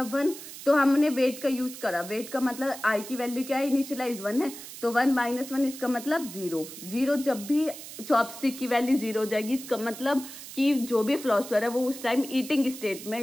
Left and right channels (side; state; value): right; noise; hiss, 13 dB below the sound